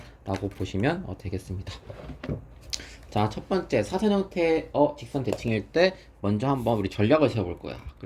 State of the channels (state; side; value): identical; both; correlation 1.00